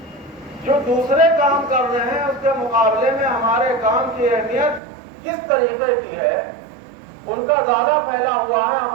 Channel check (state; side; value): drops out; left; at 4.8 s